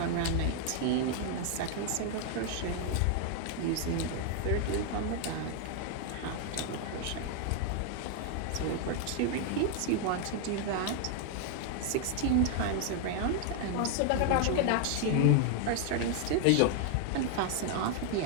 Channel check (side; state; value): both; different; correlation 0.00